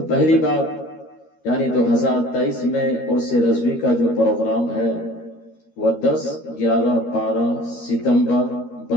پہلی بات یعنی 2023 میں عرس رضوی کا جو پروگرام ہے وہ 10، 11، 12 ستمبر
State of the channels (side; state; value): right; late; 13 ms